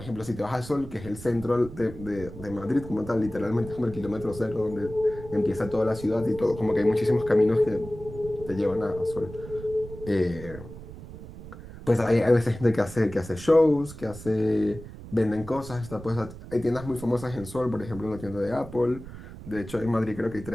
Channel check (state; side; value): noise; right; rumble, 14 dB below the sound